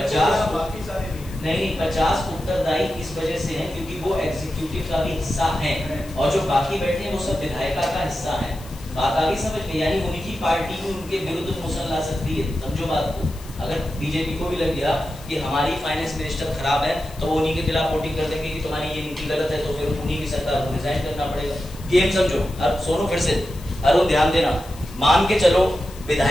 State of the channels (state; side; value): noise; left; hiss, 20 dB below the sound